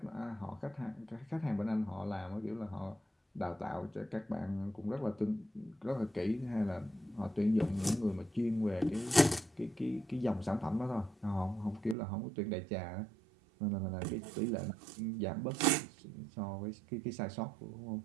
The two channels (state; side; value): drops out; left; at 12.0 s